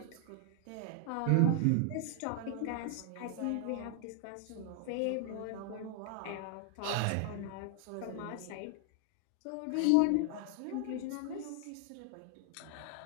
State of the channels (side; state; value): both; different; correlation 0.00